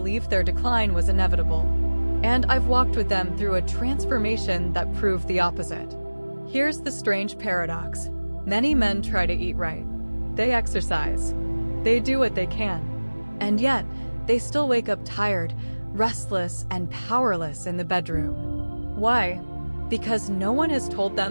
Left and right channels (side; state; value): both; inverted; correlation -1.00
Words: their decline was inevitable, and I've walked with them through a transformation that proved the opposite. Here's the strange paradox. Many men try to eat right. They exercise. They do what they can. And yet, they still wake up tired, restless, and powerless in the bedroom. Why? Because no one has told